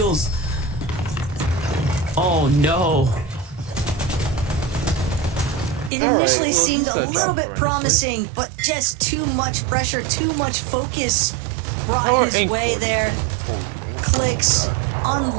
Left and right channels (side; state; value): left; drops out; at 5.9 s